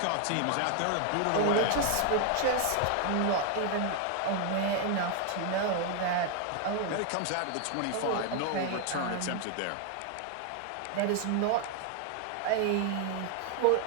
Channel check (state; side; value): different; both; correlation 0.00